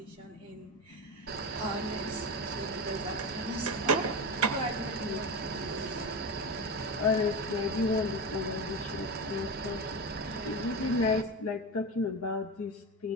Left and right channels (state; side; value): normal; both; correlation 0.20